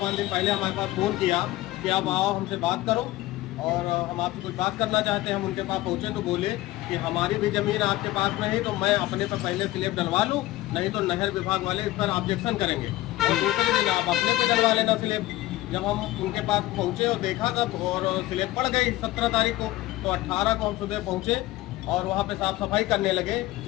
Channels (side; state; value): right; quieter; 17.1 dB